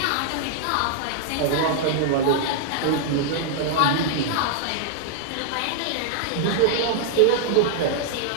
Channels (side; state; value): both; different; correlation -0.01